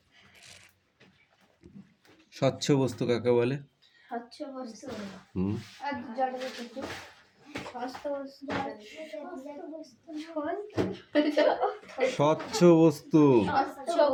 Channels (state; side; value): identical; both; correlation 1.00